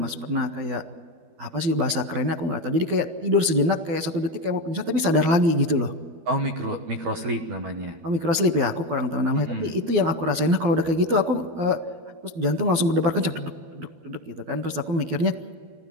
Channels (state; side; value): late; left; 12 ms